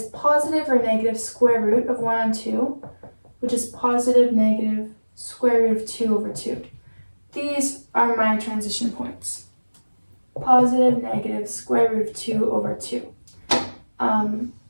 positive or negative square root of 1 on 2, which is positive negative square root of 2 over 2. These are my transition points. Positive, negative, square root of 2 over 2. And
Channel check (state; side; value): inverted; both; correlation -1.00